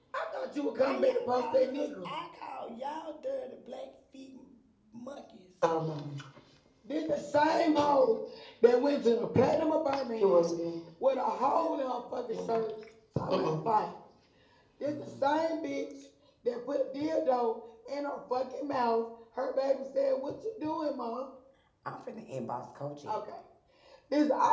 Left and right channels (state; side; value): identical; both; correlation 1.00